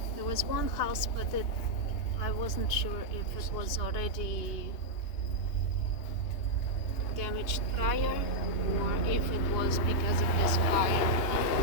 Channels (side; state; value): right; late; 2.8 ms